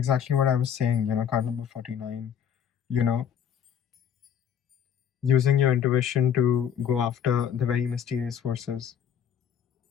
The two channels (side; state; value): right; quieter; 8.6 dB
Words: what I was saying, card number 49, you know, using your intuition to go after the very mysterious forces